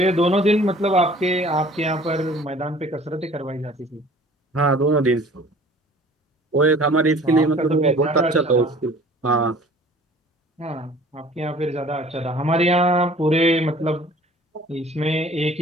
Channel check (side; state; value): both; normal; correlation 0.50